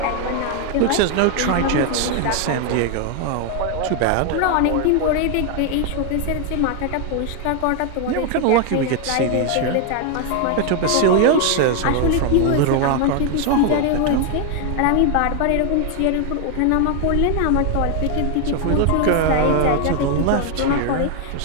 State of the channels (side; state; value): both; different; correlation 0.01